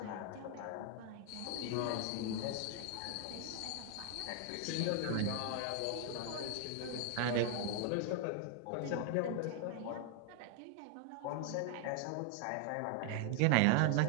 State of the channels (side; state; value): both; different; correlation 0.00